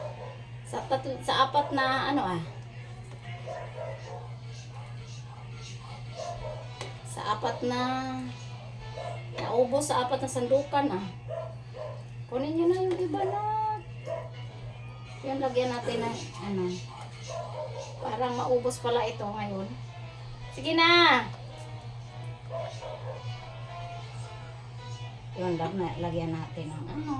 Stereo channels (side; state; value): both; identical; correlation 1.00